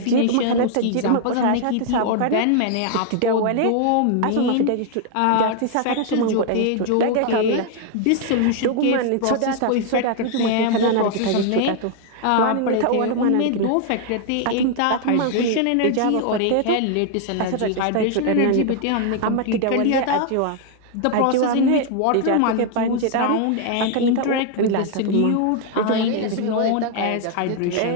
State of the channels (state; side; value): different; both; correlation 0.00